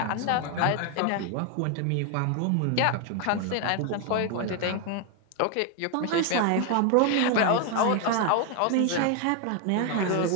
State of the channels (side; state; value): both; different; correlation 0.01